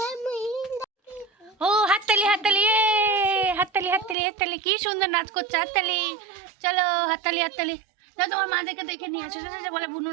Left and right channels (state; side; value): drops out; left; at 4.2 s